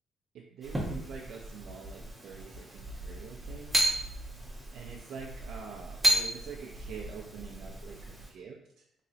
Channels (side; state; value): both; normal; correlation 0.80